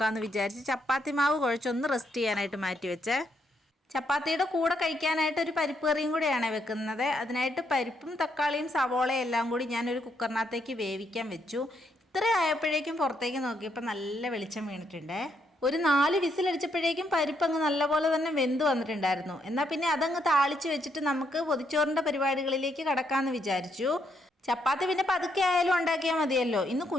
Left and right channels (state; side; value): normal; both; correlation 0.76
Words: വിചാരിച്ച് ചപ്പാത്തി മാവ് കുഴച്ചൊന്ന് റെസ്റ്റ് ചെയ്യാനായിട്ട് മാറ്റി വെച്ചേ. ചപ്പാത്തിയുടെ കൂടെ കഴിക്കാനായിട്ട് ഒരു പരിപ്പ് കറിയും കൂടെയാണ് വെക്കുന്നത്. അതിനായിട്ട് പരിപ്പും തക്കാളിയും സവോളയും എല്ലാം കൂടി ഞാനൊരു കുക്കറിനകത്തേക്ക് വേവിക്കാൻ വെച്ചു. ഇത്ര ആയപ്പോഴേക്കും പുറത്തേക്ക് നോക്കിയപ്പോൾ നല്ല വെളിച്ചം വീണിട്ടുണ്ട്. ഒരു 4 വിസിലടിച്ചപ്പോഴേക്കും പരിപ്പ് അങ്ങ് നല്ലപോലെ തന്നെ വെന്ത് വന്നിട്ടുണ്ടായിരുന്നു. എന്നാൽ പിന്നെ അതങ്ങ് താളിച്ച് വെച്ചിട്ട് നമുക്ക് പൊതിച്ചോറിൻ്റെ പരിപാടികളിലേക്ക് കടക്കാമെന്ന് വിചാരിച്ചു. ചപ്പാത്തി പിന്നെ പതുക്കെ ആയാലും ഉണ്ടാക്കിയാൽ മതിയല്ലോ. ഇന്ന്